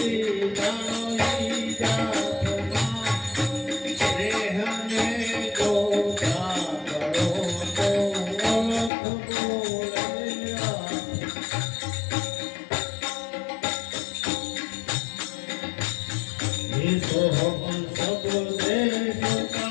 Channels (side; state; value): right; drops out; at 8.9 s